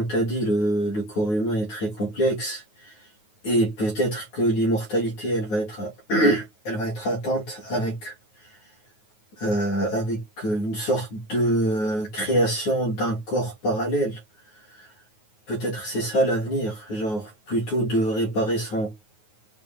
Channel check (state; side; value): late; right; 9.5 ms